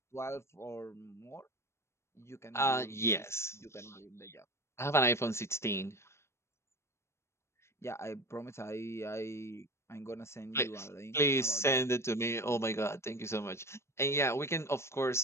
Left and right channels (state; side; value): late; right; 0.13 ms